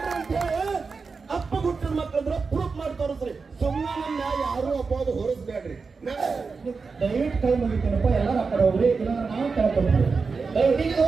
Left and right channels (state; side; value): quieter; left; 4.7 dB